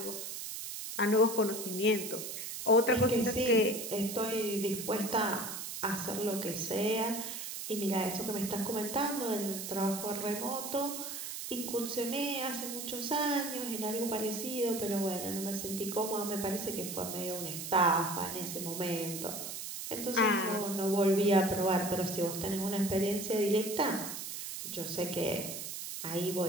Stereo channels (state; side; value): noise; right; hiss, 6 dB below the sound